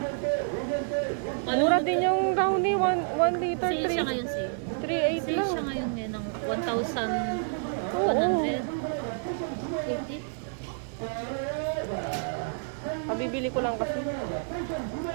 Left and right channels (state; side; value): silent; left; digital silence